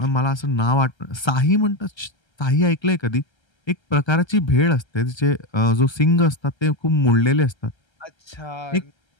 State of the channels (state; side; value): late; right; 1.3 ms